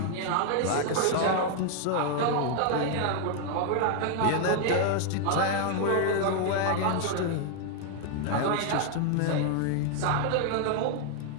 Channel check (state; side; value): different; both; correlation 0.00